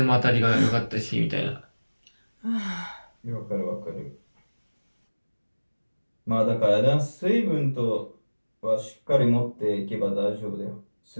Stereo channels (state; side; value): inverted; both; correlation -1.00